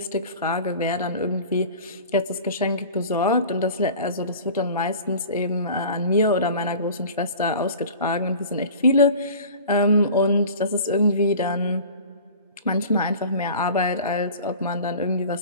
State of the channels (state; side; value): inverted; both; correlation -0.40